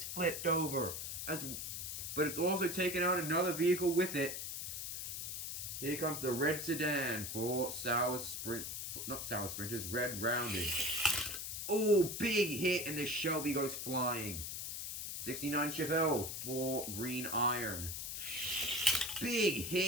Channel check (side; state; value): left; noise; hiss, 5 dB below the sound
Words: flipped over. But it's also taken out another vehicle with it. Here comes the red sedan for not sour sprinters, red rounded. Oh, big hit, and the Shelby goes flying. 69 Chevelle for green iron. Big